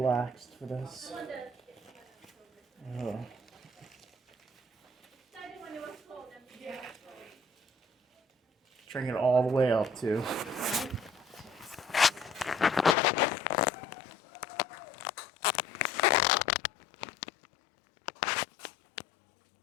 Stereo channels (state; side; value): drops out; right; at 13.0 s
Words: for this. Drink it all the way up too.